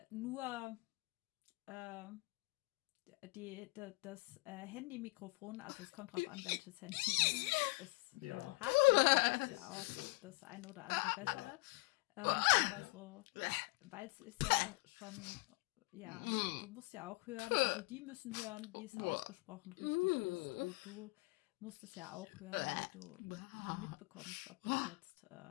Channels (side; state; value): right; quieter; 27.2 dB